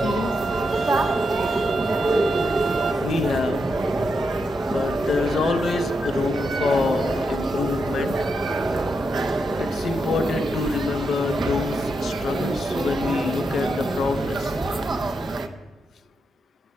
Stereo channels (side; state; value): both; normal; correlation 0.84